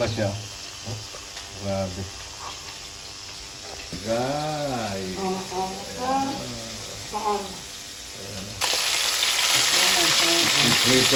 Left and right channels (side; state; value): both; identical; correlation 1.00